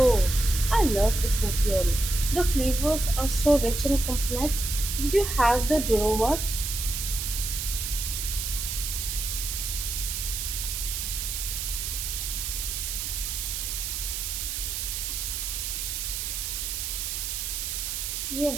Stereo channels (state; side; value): noise; right; hiss, 3 dB below the sound